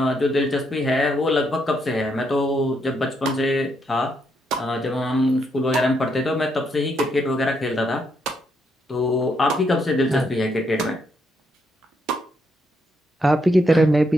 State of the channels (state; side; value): normal; both; correlation 0.76